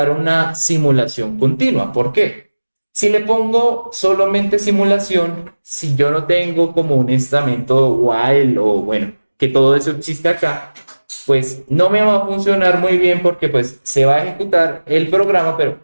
una simulación continua. ¿Por qué? Si le pongo solamente simulación, si yo no tengo como un estamento while o bueno, que todo eso existe acá, pues no me va a funcionar muy bien porque pues se va a ejecutar el programa, pero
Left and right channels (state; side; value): inverted; both; correlation -1.00